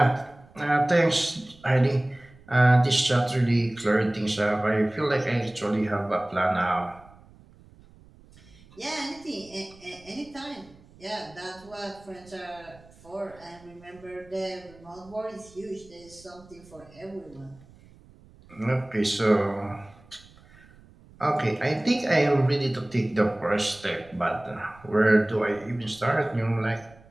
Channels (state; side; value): noise; right; rumble, 25 dB below the sound